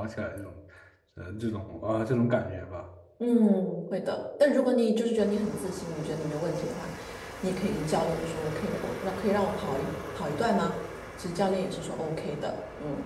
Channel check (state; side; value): identical; both; correlation 1.00